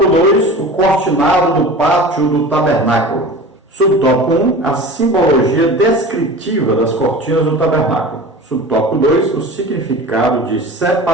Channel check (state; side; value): normal; both; correlation 0.36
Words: 2, o cortinado do pátio do tabernáculo. Subtópico 1, a simbologia descritiva das cortinas do tabernáculo. Subtópico 2, o significado de